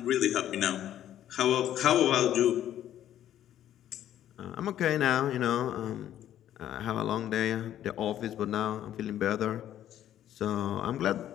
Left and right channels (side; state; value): right; quieter; 11.5 dB